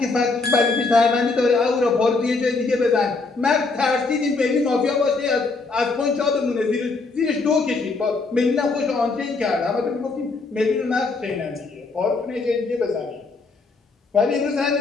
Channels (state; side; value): quieter; right; 3.9 dB